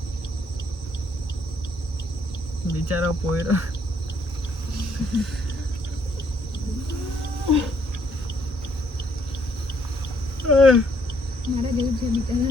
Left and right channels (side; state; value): both; normal; correlation 0.69